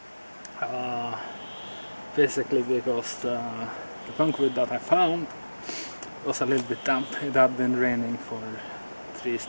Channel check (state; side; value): inverted; both; correlation -1.00